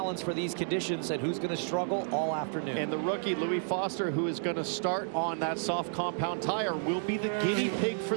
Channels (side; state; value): left; silent; digital silence